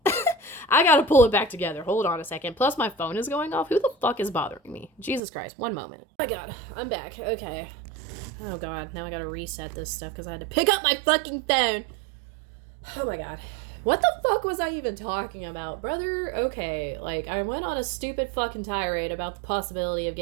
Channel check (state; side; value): drops out; left; at 5.2 s